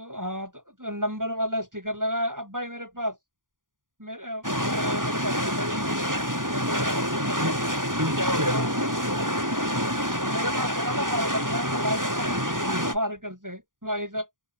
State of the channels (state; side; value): late; left; 0.89 ms